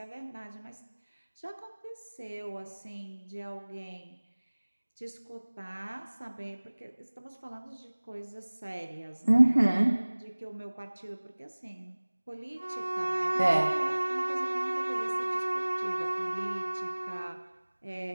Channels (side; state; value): both; inverted; correlation -1.00